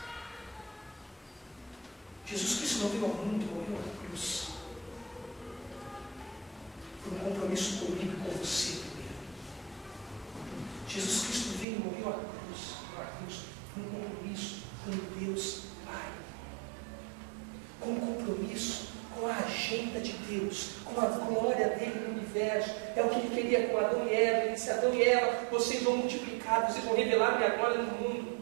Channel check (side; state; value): left; drops out; at 11.7 s